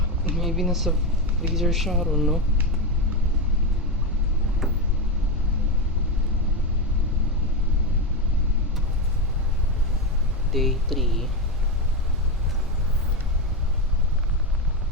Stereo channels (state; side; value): normal; both; correlation 0.13